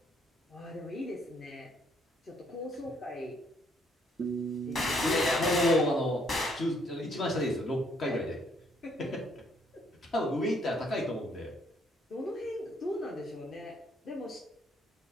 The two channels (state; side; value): normal; both; correlation 0.67